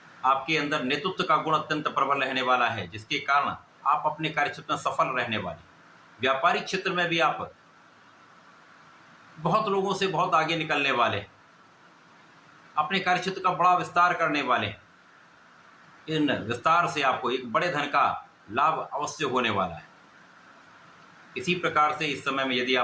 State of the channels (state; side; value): identical; both; correlation 1.00